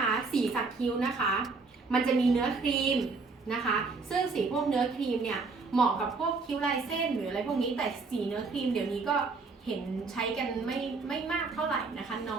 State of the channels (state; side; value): quieter; left; 4.2 dB